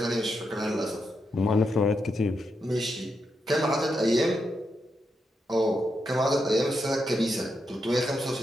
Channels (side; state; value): both; normal; correlation 0.84